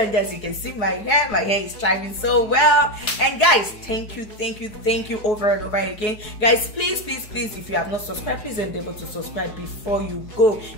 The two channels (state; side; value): late; right; 4.7 ms